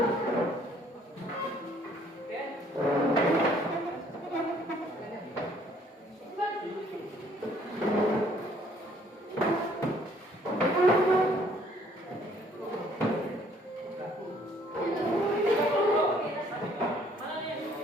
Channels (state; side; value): normal; both; correlation 0.62